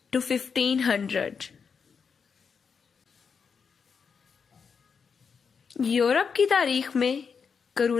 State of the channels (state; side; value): quieter; right; 6.0 dB